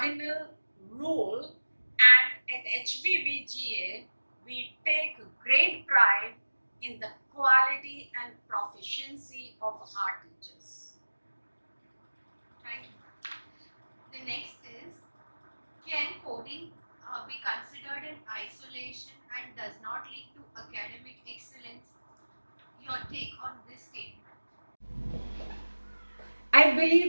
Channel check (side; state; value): both; inverted; correlation -1.00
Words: rule, and at HVBGA we take great pride in the quality and proficiency of our teachers. Thank you. The next is, can coding be considered in isolation and does not lead to academic excellence? Your take on this statement? I